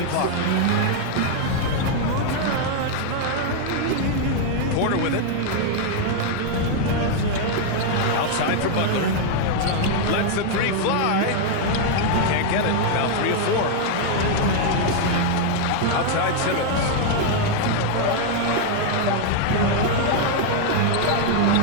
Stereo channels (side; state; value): both; different; correlation 0.00